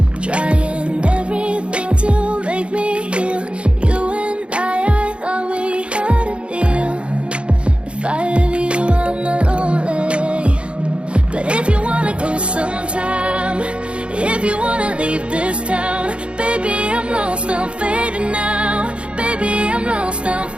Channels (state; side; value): late; left; 0.058 ms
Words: trying everything to make me heal. You and I thought we had a deal. If I have you, I'm not lonely. But if you wanna go sometime, if you wanna leave this town, baby, I'm lost, I'm fading now. Baby, I'm lost, I'm